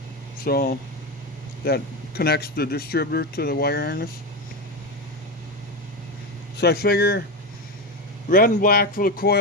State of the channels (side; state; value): both; normal; correlation 0.15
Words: So that connects the distributor to the wire harness. So I figure red and black for the